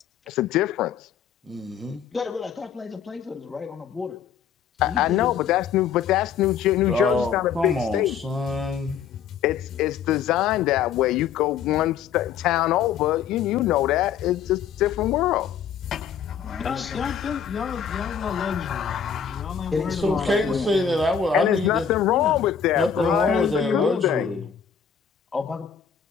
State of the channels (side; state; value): right; quieter; 7.9 dB